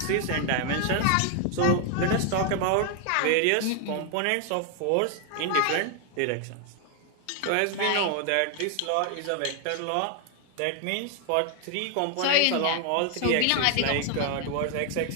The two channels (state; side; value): different; both; correlation 0.00